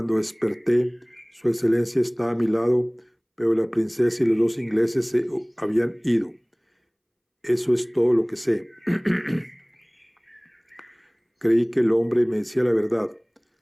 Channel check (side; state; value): both; identical; correlation 1.00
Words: desperté, Su Excelencia estaba a mi lado, pero la princesa y los dos ingleses se habían ido. Eso es todo lo que sé. Creí que el hombre me decía la verdad.